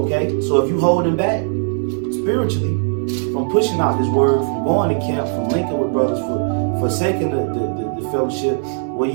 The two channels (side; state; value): left; silent; digital silence